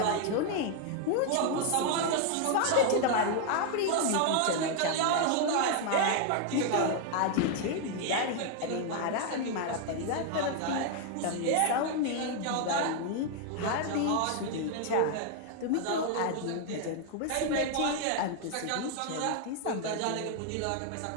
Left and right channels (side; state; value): both; different; correlation 0.00